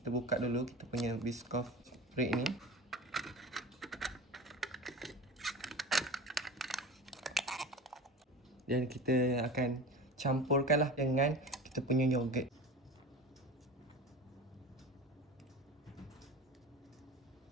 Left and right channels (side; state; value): both; normal; correlation 0.34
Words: buka dulu kita punya Biscoff spread ni. Dan kita akan campurkanlah dengan kita punya yogurt.